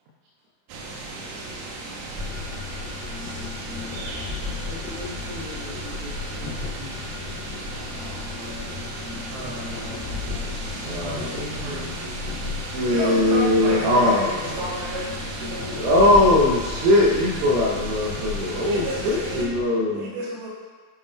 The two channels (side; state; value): left; late; 30 ms